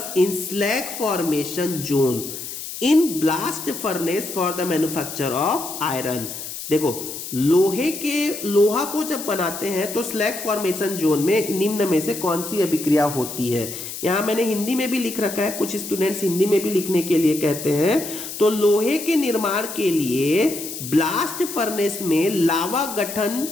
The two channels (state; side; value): noise; left; hiss, 9 dB below the sound